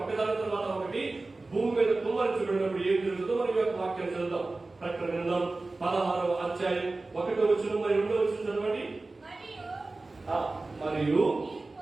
ఒకదాని తర్వాత ఒకటి భూమి మీద కుమ్మరించబడినప్పుడు ఏం జరుగుతుందో మనం యొక్క వాక్యాన్ని చదువుతాం. ప్రకటన గ్రంథం 16వ అధ్యాయం 1వ వచనం మరి 2వ వచనం చదవండి. మరియు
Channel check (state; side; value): quieter; left; 3.3 dB